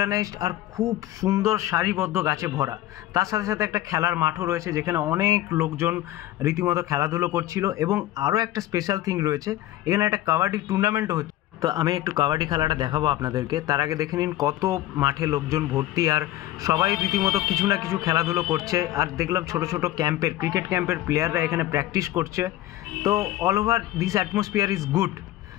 আর খুব সুন্দর সারিবদ্ধ গাছে ভরা। তার সাথে সাথে একটা খেলার মাঠও রয়েছে, যেখানে অনেক লোকজন রীতিমতো খেলাধুলো করছিল। এবং আরও একটা স্পেশাল থিং রয়েছে, এখানে একটা কাবাডি টুর্নামেন্টও হচ্ছে। তো আমি একটু কাবাডি খেলাটা দেখাবো আপনাদেরকে, তার আগে দেখে নিন কত মাঠে লোকজন ভর্তি, আর সবাই রীতিমতো কিছু না কিছু খেলাধুলো করছে। আর দেখলাম ছোট ছোট ক্যাম্পের, ক্রিকেট ক্যাম্পের প্লেয়াররা এখানে প্র্যাকটিস করছে। তো all over this atmosphere is good.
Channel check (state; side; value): quieter; right; 15.1 dB